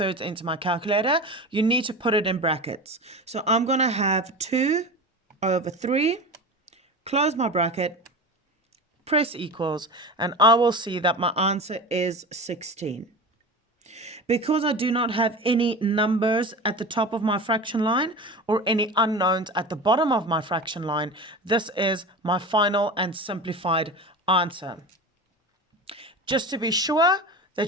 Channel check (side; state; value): both; normal; correlation 0.29